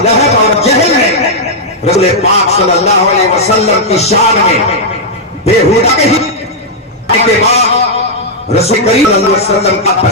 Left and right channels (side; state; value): both; normal; correlation -0.06